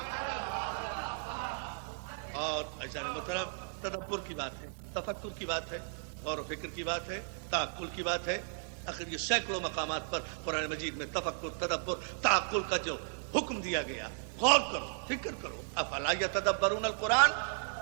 اور ایسا محترم تدبر کی بات ہے، تفکر کی بات ہے، غور و فکر کی بات ہے، تعقل کی بات ہے. آخر یہ سینکڑوں مقامات پر قرآن مجید میں تفکر، تدبر، تعقل کا جو حکم دیا گیا، غور کرو، فکر کرو. افلا یتدبرون القرآن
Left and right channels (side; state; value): left; silent; digital silence